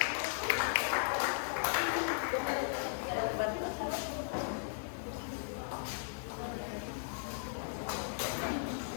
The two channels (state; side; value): silent; right; digital silence